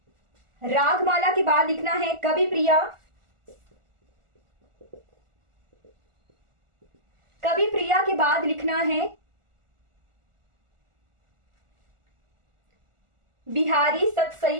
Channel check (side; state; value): left; late; 1.4 ms